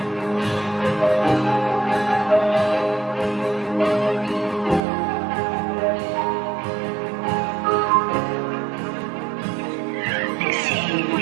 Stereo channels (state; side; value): drops out; left; at 4.8 s